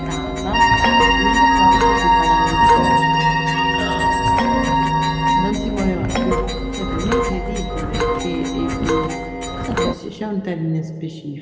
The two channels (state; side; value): identical; both; correlation 1.00